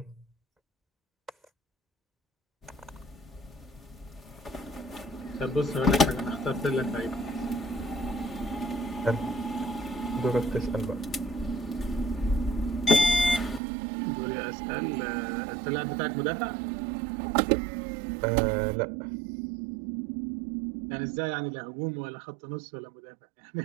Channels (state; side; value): drops out; left; at 13.6 s